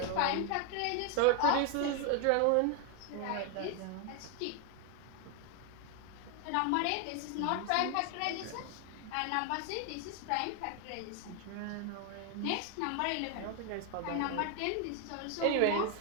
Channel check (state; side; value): different; both; correlation 0.00